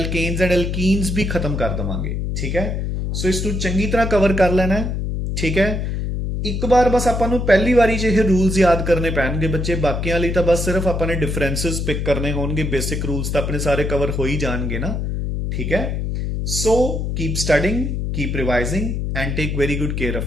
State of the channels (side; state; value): left; noise; hum, 2 dB below the sound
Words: एंड एल्कीन्स भी खत्म कर देवांगे, ठीक है। सो इसनूं चंगी तरह कवर कर लेना है, ठीक है। ਇੱਕ ਵਾਰ ਬਸ ਆਪਾਂ ਨੂੰ ਪਹਿਲੀ ਵਾਰੀ 'ਚ ਇਹ ਰੂਲਸ ਯਾਦ ਕਰਨੇ ਪੈਣਗੇ ਬੱਚੇ, ਬਾਕੀਆਂ ਲਈ ਤਾਂ ਬਸ ਸਿਰਫ ਆਪਾਂ ਨੇ ਡਿਫਰੈਂਸਸ ਪਿਕ ਕਰਨੇ ਹੋਣਗੇ, ਬੇਸਿਕ ਰੂਲਸ ਤਾਂ ਆਪਣੇ ਸਾਰੇ ਕਵਰ ਹੋ ਹੀ ਜਾਣਗੇ ਨਾ, ਠੀਕ ਹੈ। So keep studying, keep revising and take very good care